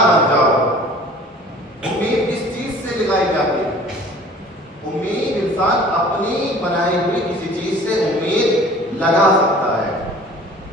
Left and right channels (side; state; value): both; normal; correlation 0.47